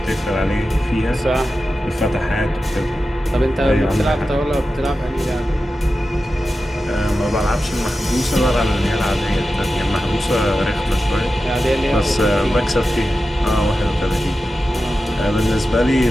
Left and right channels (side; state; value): both; normal; correlation 0.92